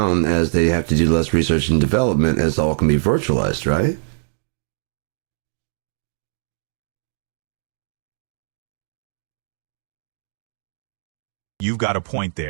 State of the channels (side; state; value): left; silent; digital silence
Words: as they have to do less research and development, as all can be virtualized, right? You've got a point